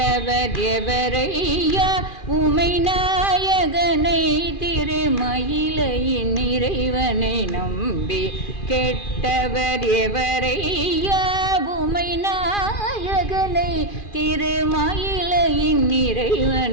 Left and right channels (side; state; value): right; late; 2.4 ms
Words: எவரையா உமை நாயகனை திருமயிலையின் இறைவனை நம்பி கெட்டவர் எவரையா உமை நாயகனை திருமயிலையின்